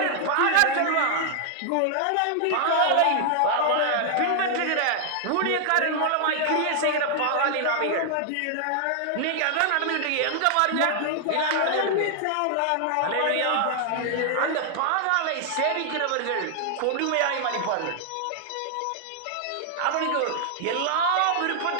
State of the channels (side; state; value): both; different; correlation 0.00